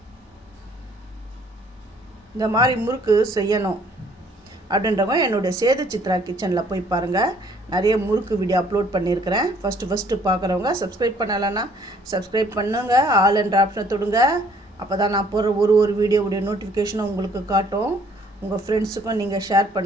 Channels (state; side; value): normal; both; correlation 0.60